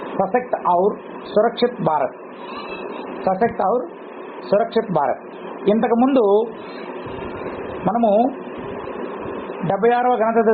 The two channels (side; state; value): both; identical; correlation 1.00